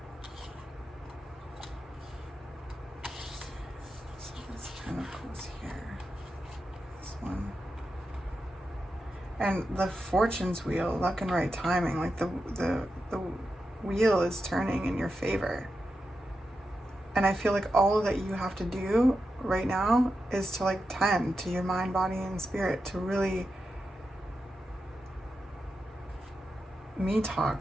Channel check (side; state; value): both; normal; correlation 0.89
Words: So this kind of goes here. This one. And the fortune's wheel, luck and right timing, like the wheel is turning in your favor. And I feel like all that you have to do right now is to like tend to your mind, body, and spirit, to really